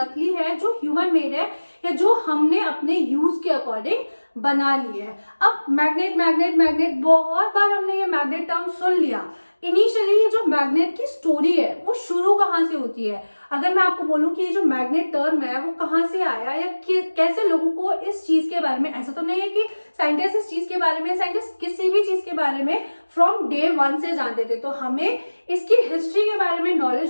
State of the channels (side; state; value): both; inverted; correlation -1.00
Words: है, जो ह्यूमन मेड है या जो हमने अपने यूज के अकॉर्डिंग बना ली है. अब मैग्नेट मैग्नेट मैग्नेट बहुत बार हमने ये मैग्नेट टर्म सुन लिया. इनिशियली ये जो मैग्नेट की स्टोरी है वो शुरू कहाँ से होती है. अगर मैं आपको बोलूं कि ये जो मैग्नेट टर्म है वो कहाँ से आया या कैसे लोगों को इस चीज के बारे में, ऐसा तो नहीं है कि साइंटिस्ट इस चीज के बारे में, साइंटिस्ट किसी भी चीज के बारे में फ्रॉम डे वन से जानते थे. तो हमें इसकी हिस्ट्री के बारे में